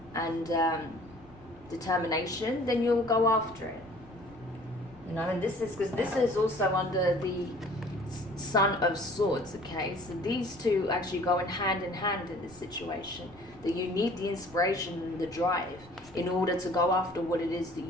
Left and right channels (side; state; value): left; noise; rumble, 23 dB below the sound